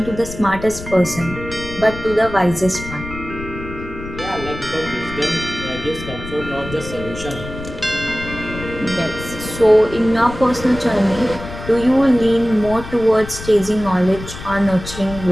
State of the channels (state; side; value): noise; left; rumble, 11 dB below the sound